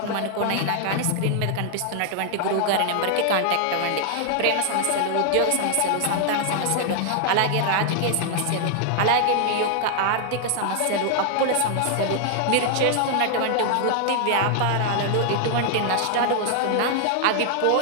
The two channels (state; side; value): different; both; correlation 0.00